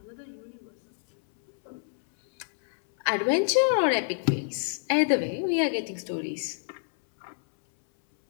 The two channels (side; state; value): right; silent; 59 dB below the other